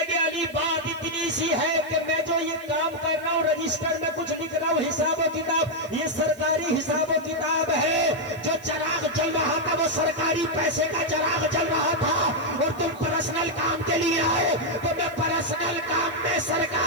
علی بات اتنی سی ہے کہ میں جو یہ کام کر رہا ہوں، رجسٹر میں کچھ لکھ رہا ہوں، حساب و کتاب، یہ سرکاری حساب و کتاب ہے، جو چراغ جل رہا تھا وہ سرکاری پیسے کا چراغ جل رہا تھا، اور تم پرسنل کام کے لیے آئے تو میں پرسنل کام میں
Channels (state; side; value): noise; right; hiss, 24 dB below the sound